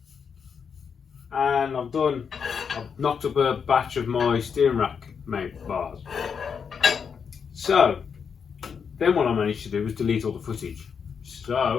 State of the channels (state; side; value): quieter; right; 6.5 dB